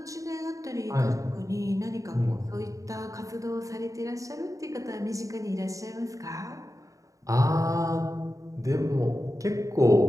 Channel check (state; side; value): late; left; 0.16 ms